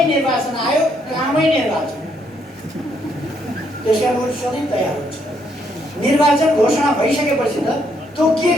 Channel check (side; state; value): both; normal; correlation 0.73